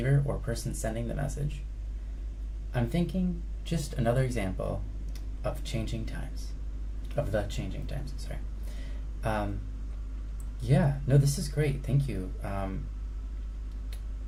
or person sending the message? I'm thinking just another example of the changing times. Yeah, no, this is great. Thank you.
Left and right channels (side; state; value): both; identical; correlation 1.00